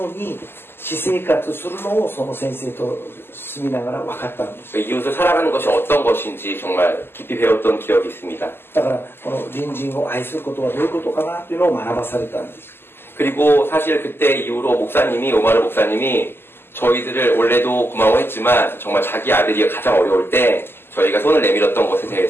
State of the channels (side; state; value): right; late; 0.11 ms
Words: うに私生活するのをその先生と住みながら分かったんです。 이웃을 살아가는 것이 어떤 것인지 정말 깊이 배웠던 기억이 있습니다. だからこの隣人を愛することはどういうことかなというのを学ばされたんです。 그리고 사실 그때 이후로 오마르 목사님이 저희들을 원래도 고마워했지만 정말 자기 아들이 가장 어려울 때 저희가 손을 내밀었던 것에